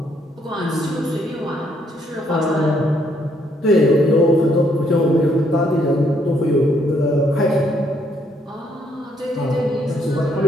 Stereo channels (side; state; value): both; normal; correlation 0.70